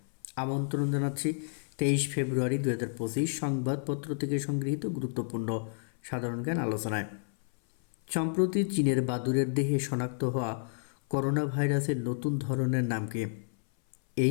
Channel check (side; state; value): right; silent; 57 dB below the other